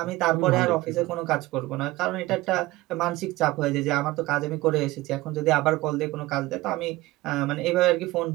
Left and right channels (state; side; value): quieter; left; 18.9 dB